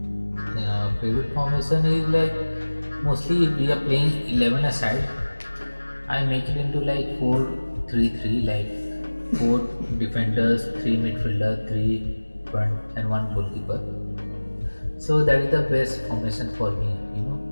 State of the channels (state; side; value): inverted; both; correlation -1.00